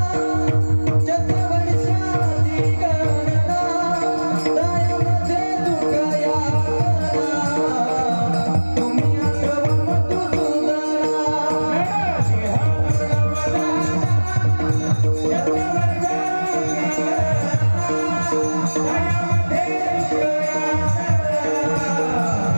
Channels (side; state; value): both; inverted; correlation -1.00